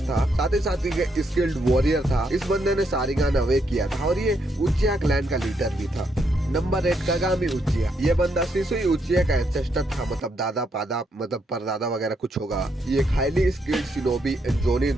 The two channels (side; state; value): both; normal; correlation 0.77